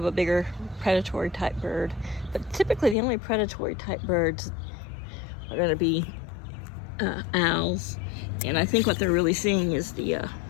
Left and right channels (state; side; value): drops out; right; at 3.0 s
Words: a bigger predatory type bird. But typically the only predatory type birds are going to be owls, and I think what they're really seeing is the